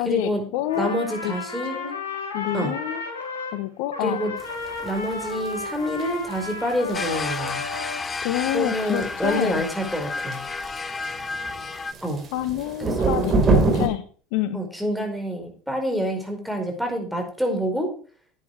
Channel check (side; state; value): both; normal; correlation 0.41